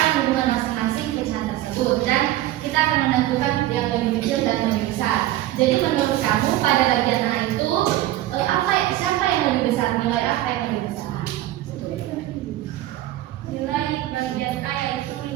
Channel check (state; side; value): quieter; left; 14.8 dB